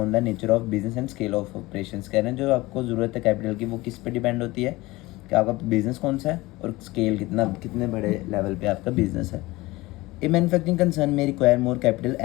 the nature of business and scale of operations. कह रहे हैं जो आपको ज़रूरत है कैपिटल की वो किस पे डिपेंड होती है कि आपका बिजनेस कौन सा है और स्केल कितने बड़े लेवल पे आपका बिजनेस है। A manufacturing concern may require more capital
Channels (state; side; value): quieter; right; 20.2 dB